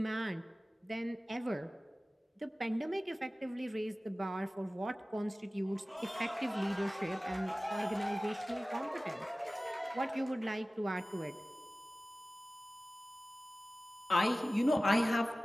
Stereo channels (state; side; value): normal; both; correlation 0.97